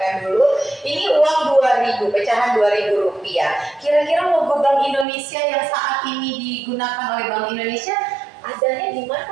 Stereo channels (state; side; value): drops out; left; at 5.1 s